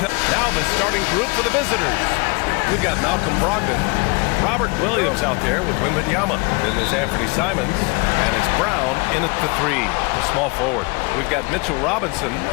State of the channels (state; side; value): quieter; right; 28.2 dB